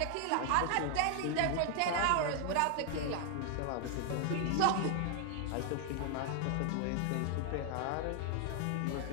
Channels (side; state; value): both; different; correlation 0.00